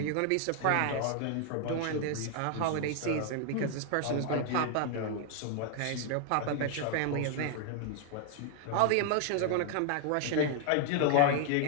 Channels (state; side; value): different; both; correlation 0.00